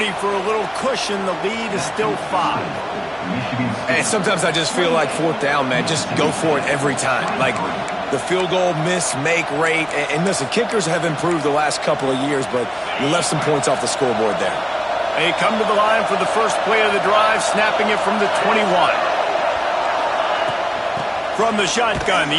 for a little cushion. The lead is still 5. And sometimes I just feel like fourth down, man. Just go for it every time. Like the field goal miss-make rate. And listen, kickers have improved the last couple of years, but you left some points off the scoreboard there. They come to the line for the first play of the drive, snapping it from the 21. From the shotgun,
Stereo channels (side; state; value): both; identical; correlation 1.00